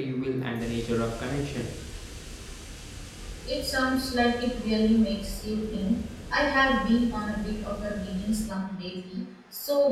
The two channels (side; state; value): both; identical; correlation 1.00